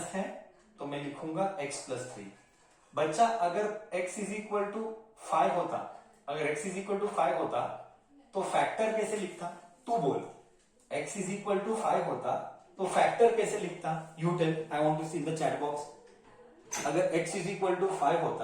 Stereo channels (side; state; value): both; identical; correlation 1.00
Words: है तो मैं लिखूंगा x प्लस 3. बच्चा, अगर x इज इक्वल टू 5 होता, अगर x इज इक्वल टू 5 होता तो फैक्टर कैसे लिखता? तू बोल. x इज इक्वल टू 5 होता तो फैक्टर कैसे लिखता? You tell. I want to see in the chat box. अगर x इज इक्वल टू 5